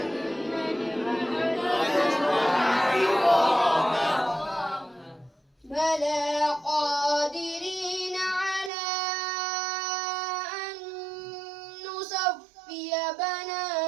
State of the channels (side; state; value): left; drops out; at 8.7 s